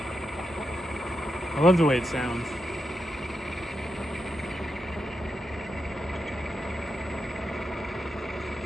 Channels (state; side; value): normal; both; correlation 0.86